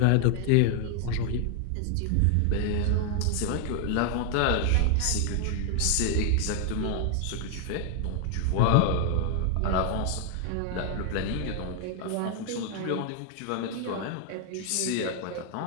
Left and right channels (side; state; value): both; different; correlation 0.00